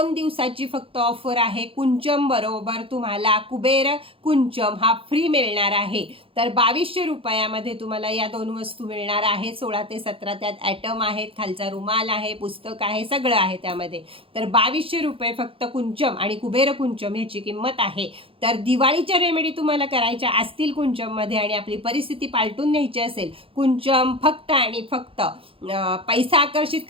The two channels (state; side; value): late; left; 0.27 ms